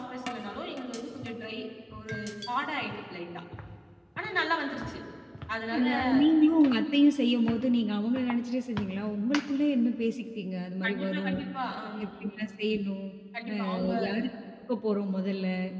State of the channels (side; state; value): both; identical; correlation 1.00